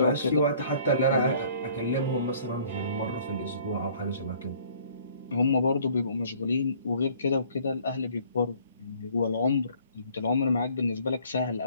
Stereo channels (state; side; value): inverted; both; correlation -0.57